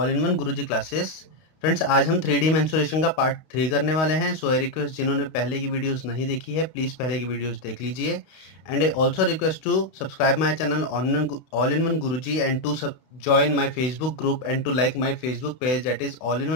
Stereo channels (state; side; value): late; right; 32 ms